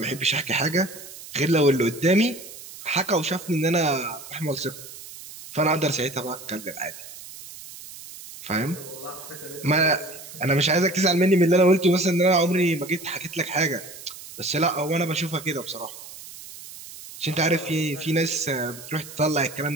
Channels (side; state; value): right; noise; hiss, 15 dB below the sound